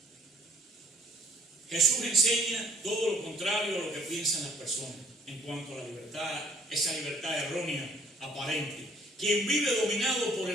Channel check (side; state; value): both; normal; correlation 0.59